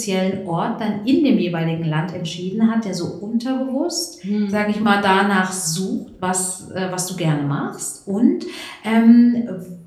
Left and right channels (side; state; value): both; identical; correlation 1.00